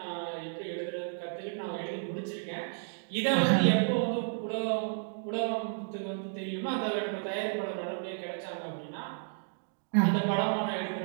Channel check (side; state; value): left; silent; digital silence